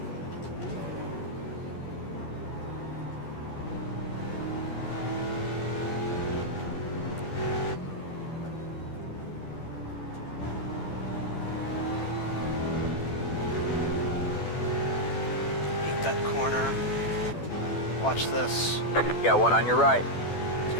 That corner. Watch this. Got one on your right. He's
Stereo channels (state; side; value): late; right; 12 ms